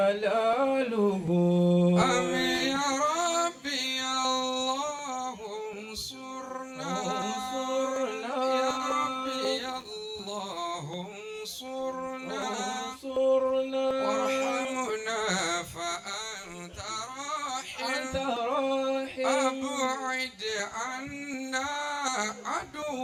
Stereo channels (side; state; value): both; identical; correlation 1.00